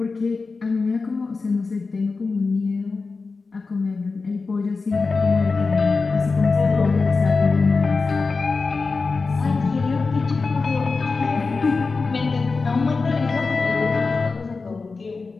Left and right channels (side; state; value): right; quieter; 4.2 dB